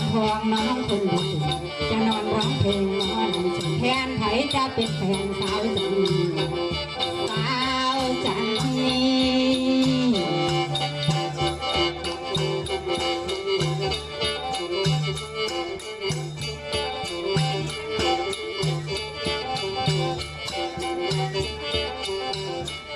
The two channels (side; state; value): both; identical; correlation 1.00